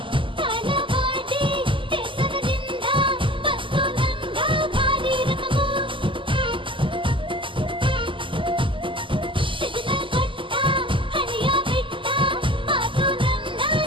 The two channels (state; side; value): late; left; 0.25 ms